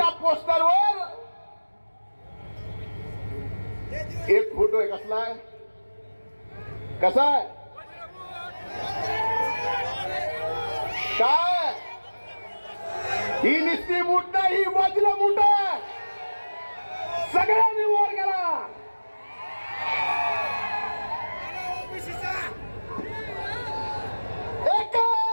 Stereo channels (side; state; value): both; inverted; correlation -1.00